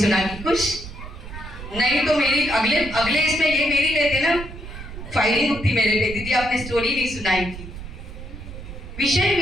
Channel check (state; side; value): noise; right; rumble, 12 dB below the sound